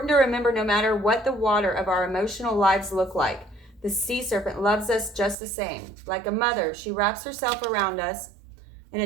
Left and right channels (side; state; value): left; drops out; at 5.4 s